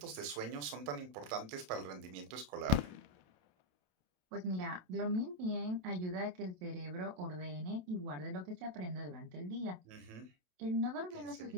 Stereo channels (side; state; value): left; late; 27 ms